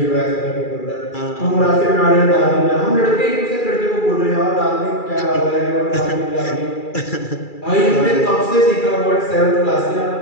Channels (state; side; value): late; right; 2.3 ms